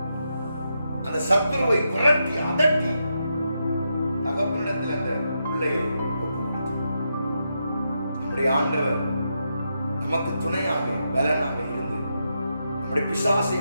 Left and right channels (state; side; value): inverted; both; correlation -0.84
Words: அந்த சத்துருவை விரட்டி அதட்டி தகப்பனிடத்தில் அந்த பிள்ளையை ஒப்புவித்தார். நம்முடைய ஆண்டவர் நமக்கு துணையாக பலனாக இருந்து நம்முடைய பிசாசை